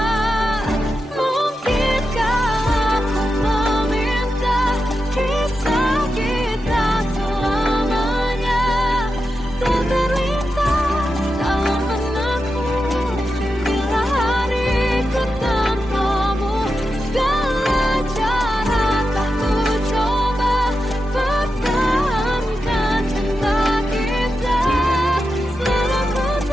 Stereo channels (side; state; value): both; normal; correlation 0.89